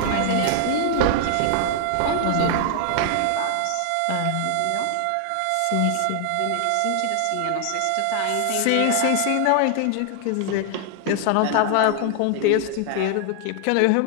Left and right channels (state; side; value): different; both; correlation 0.00